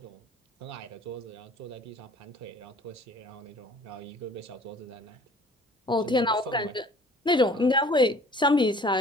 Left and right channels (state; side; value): normal; both; correlation 0.51